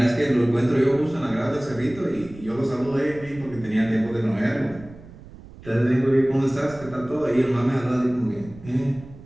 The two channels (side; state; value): right; noise; rumble, 18 dB below the sound